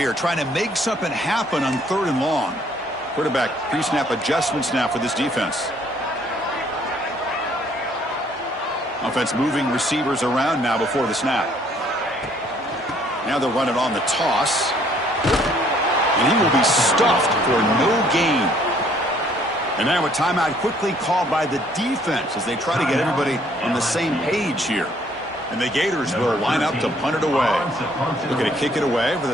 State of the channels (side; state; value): both; normal; correlation 0.63